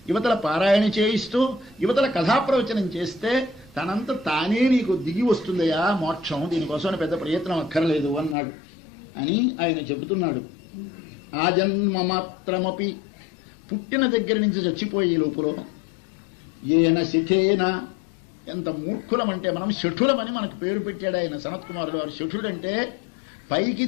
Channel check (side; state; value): right; drops out; at 8.3 s